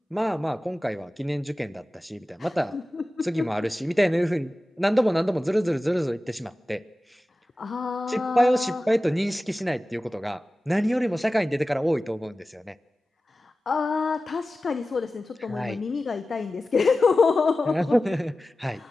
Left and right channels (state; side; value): normal; both; correlation 0.95